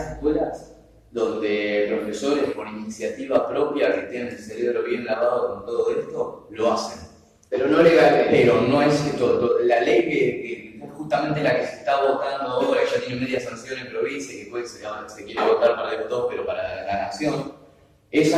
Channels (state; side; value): identical; both; correlation 1.00